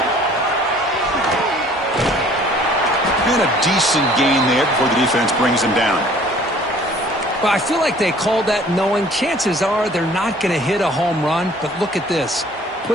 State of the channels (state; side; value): normal; both; correlation 0.54